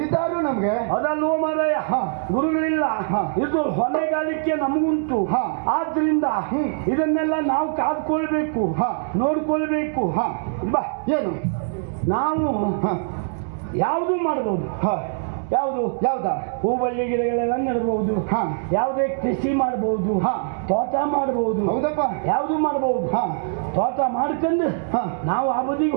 ನಮ್ಗೆ. ಅದಲ್ವೋ ಮಾರಾಯ, ಗುರುಗಳಿಲ್ಲ. ಇದು ಹೊಣೆಗಾರಿಕೆ ನಮಗುಂಟು. ಆದ್ರಿಂದ ಇದನ್ನೆಲ್ಲ ನಾವು ಕಾದ್ಕೊಳ್ಬೇಕು, ನೋಡ್ಕೊಳ್ಬೇಕು. ಬಾ, ಏನು ನಾವು ಯಾವುದು ಮಾಡಬಹುದು. ಯಾವ್ದಾ? ಹೂಬಳ್ಳಿ ಗಿಡಗಳೆಲ್ಲ ನೆಡಬಹುದು. ಯಾವುದೇ ಕೃಷಿ ಮಾಡಬಹುದು, ತೋಟ ಮಾಡಬಹುದು. ಹೌದಪ್ಪ, ಯಾವುದು ಮಾಡಬಹುದು. ತೋಟ ಮಾಡ್ಕೊಂಡು ನಾವು ಆ ಬದಿಗೆ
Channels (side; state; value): left; silent; digital silence